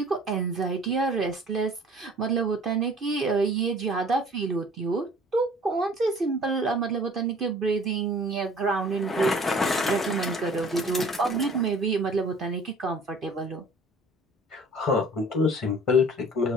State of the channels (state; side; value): normal; both; correlation 0.50